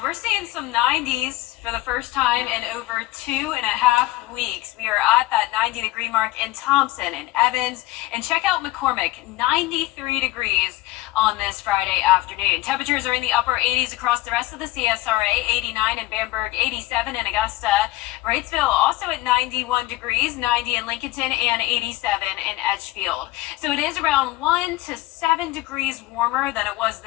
we're seeing some 90s for the first time in over 2.5 weeks. We are at that 90-degree mark in Thompson and Evans. And check out McCormick, 93 degrees on this Friday afternoon. Temperatures are in the upper 80s across the rest of the CSRA, 89 in Bamberg, 87 in Augusta. Wrightsville also at 91 degrees, 90 in Lincolnton, and 87 in Edgefield. So it is around 1 to 7 degrees warmer than it was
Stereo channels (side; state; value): right; quieter; 17.5 dB